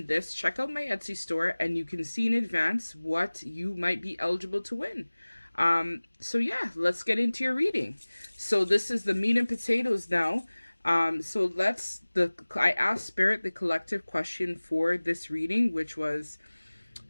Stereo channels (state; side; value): inverted; both; correlation -1.00